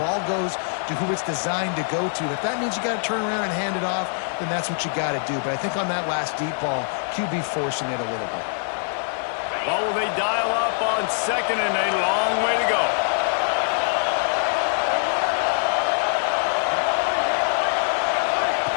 goes to who it's designed to go to. If that means you got to turn around and hand it off, then that's what you got to do. But I think on that last deep ball, QB forcing it a little bit. Well, will they dial up on second and a long way to go?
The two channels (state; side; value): silent; right; digital silence